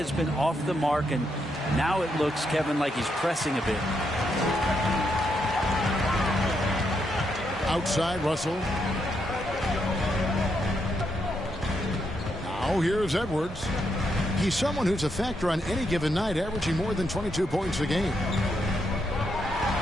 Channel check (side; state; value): both; normal; correlation 0.79